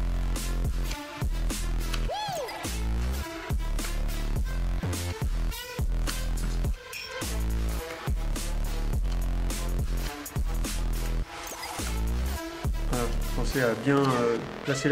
Voilà, pensez à bien placer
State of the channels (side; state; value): both; identical; correlation 1.00